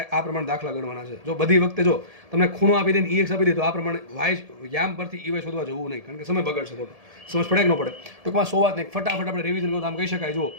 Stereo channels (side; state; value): left; late; 1.7 ms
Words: આ પ્રમાણે દાખલા ગણવાના છે. જો બધી વખતે જો તમને ખૂણો આપી દઈને EX આપી દે તો આ પ્રમાણે યામ પરથી EY શોધવા જવું નહીં, કારણ કે સમય બગડશે ખોટો. સમજ પડે કે ન પડે? ટૂંકમાં 100 વાત નહીં, ફટાફટ આપણે રિવિઝન કરો તો આમ કહી શકાય. જો